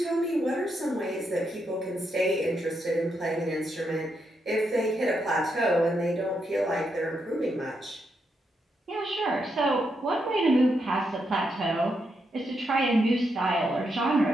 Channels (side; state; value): both; normal; correlation 0.81